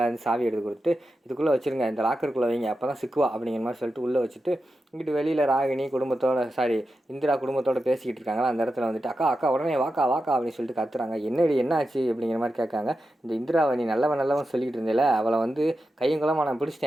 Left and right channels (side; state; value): both; normal; correlation 0.90